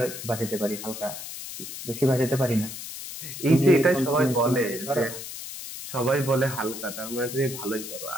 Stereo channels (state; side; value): noise; left; hiss, 9 dB below the sound